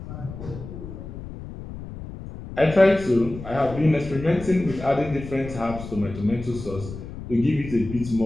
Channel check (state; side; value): noise; left; rumble, 11 dB below the sound